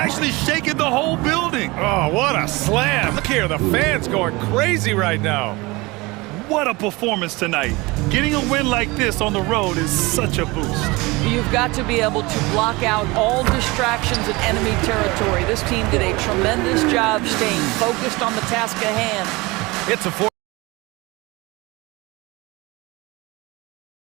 shaking the whole building. Oh, what a slam. Look here, the fans going crazy right now. What a performance tonight. Getting a win like this on the road is such a boost. You've got to be able to block out all distractions in enemy territory. This team did a tremendous job staying focused on the task at hand. It's a 4.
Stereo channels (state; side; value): quieter; left; 23.3 dB